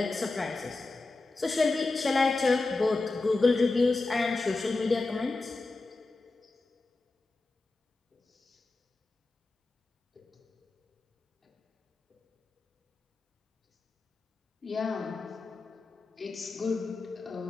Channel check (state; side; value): quieter; right; 3.4 dB